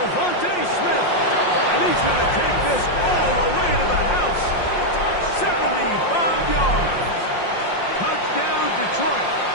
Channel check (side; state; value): right; late; 5.6 ms